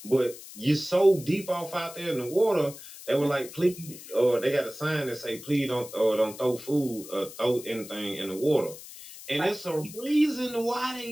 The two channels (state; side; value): noise; left; hiss, 15 dB below the sound